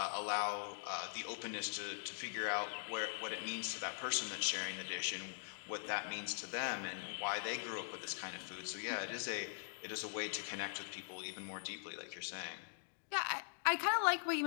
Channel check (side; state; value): right; silent; digital silence